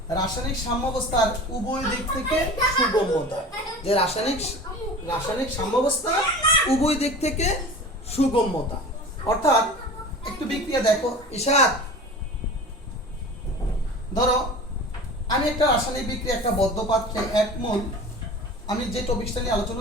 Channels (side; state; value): both; normal; correlation 0.37